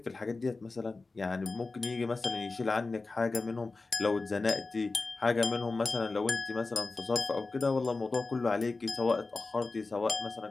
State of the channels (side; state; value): right; quieter; 3.7 dB